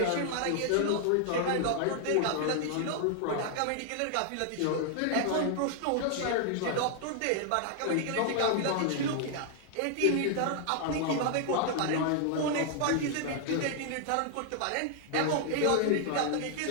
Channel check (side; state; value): both; different; correlation 0.00